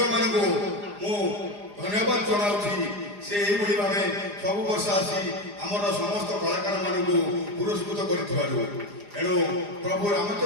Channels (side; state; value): left; late; 4.9 ms